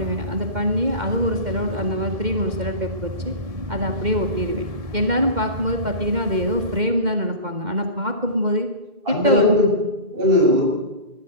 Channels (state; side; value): late; left; 2.1 ms